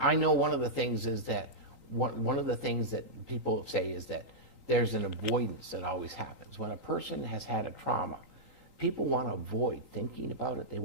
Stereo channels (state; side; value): late; left; 3.8 ms